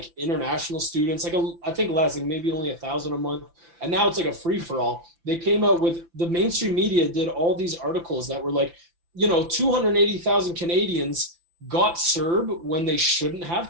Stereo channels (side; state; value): left; late; 5.9 ms